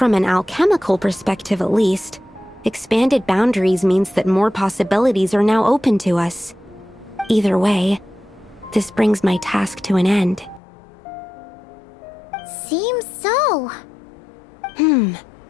an alchemical perspective at least, expanded boundaries means that more possibilities are now open to us. Either way, this brings my task to an end. Seems so.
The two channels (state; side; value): drops out; right; at 10.6 s